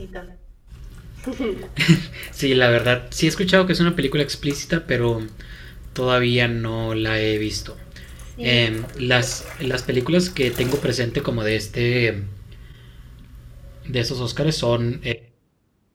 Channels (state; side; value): identical; both; correlation 1.00